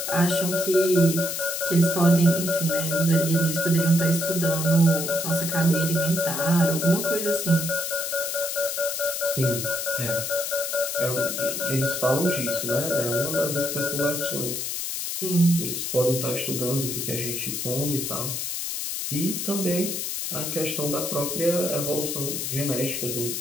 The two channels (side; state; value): left; noise; hiss, 3 dB below the sound